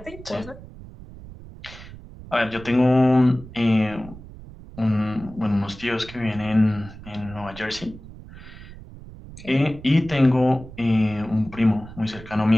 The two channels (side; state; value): right; noise; rumble, 16 dB below the sound